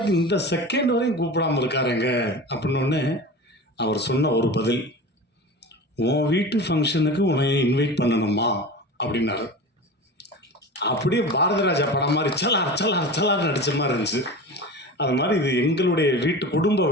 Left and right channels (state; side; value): normal; both; correlation 0.32